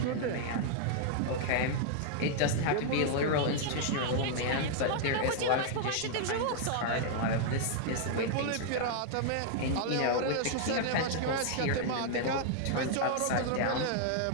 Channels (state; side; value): different; both; correlation 0.00